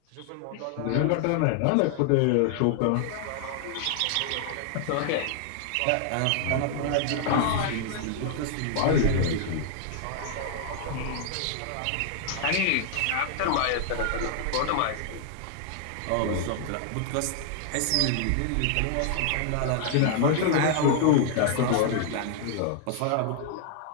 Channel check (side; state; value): both; different; correlation 0.00